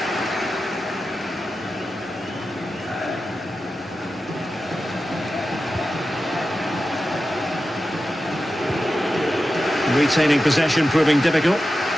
Retaining possession proving difficult.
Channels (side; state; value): both; normal; correlation 0.92